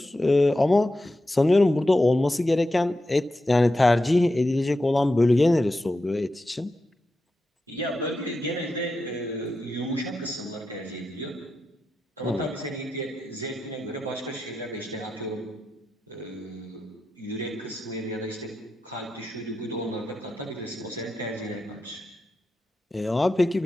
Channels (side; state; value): both; normal; correlation 0.89